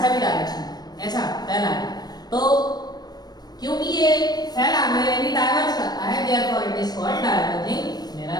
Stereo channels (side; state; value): right; late; 0.19 ms